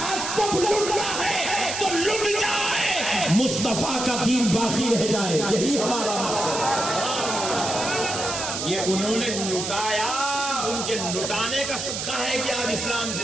سب لٹنا ہے تو لٹ جائے, مصطفیٰ کا دین باقی رہ جائے. یہی ہمارا مقصد ہے. یہ انہوں نے لٹایا, ان کے لٹانے کا صدقہ ہے کہ آج اسلام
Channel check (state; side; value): noise; right; hiss, 4 dB below the sound